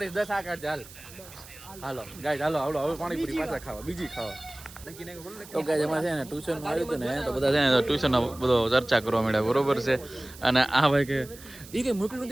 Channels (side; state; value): right; noise; hiss, 18 dB below the sound